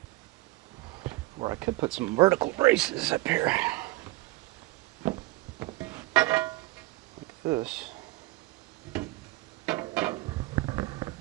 Or I could put some vertical braces up here. Like this.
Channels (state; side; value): quieter; left; 19.7 dB